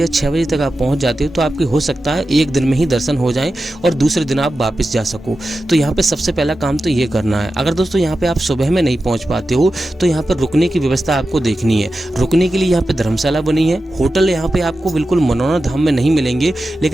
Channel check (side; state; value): both; normal; correlation 0.92